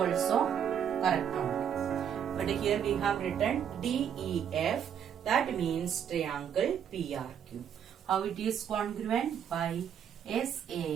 correct only. But here we have written DEF, that means triangle PRQ. How it is congruent? By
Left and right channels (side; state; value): left; quieter; 8.5 dB